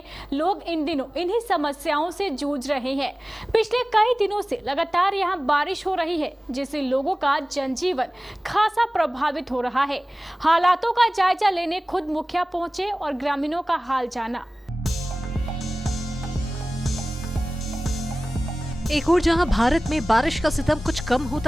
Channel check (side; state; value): both; normal; correlation 0.97